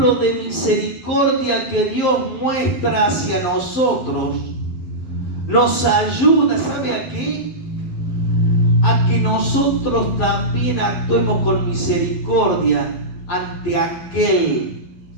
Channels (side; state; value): right; late; 12 ms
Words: de misericordia que Dios muestra hacia nosotros nos ayuda, ¿sabe a qué? A que nosotros también actuemos con misericordia ante aquel